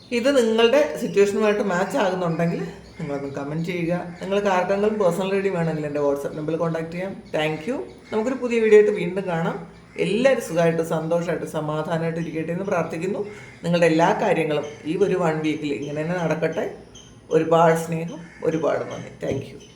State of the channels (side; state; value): both; identical; correlation 1.00